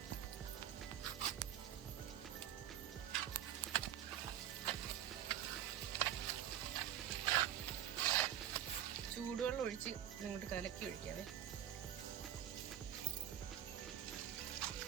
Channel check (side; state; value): left; quieter; 11.0 dB